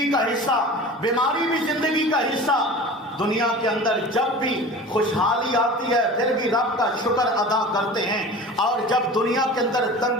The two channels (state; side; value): normal; both; correlation 0.36